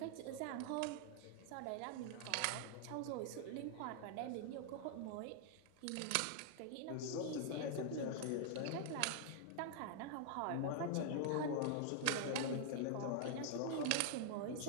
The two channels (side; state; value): both; different; correlation 0.00